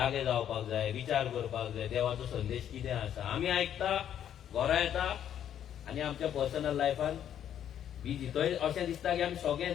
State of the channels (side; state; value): right; quieter; 10.0 dB